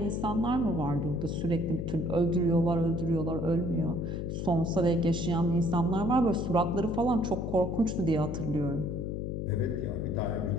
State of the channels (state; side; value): noise; left; hum, 3 dB below the sound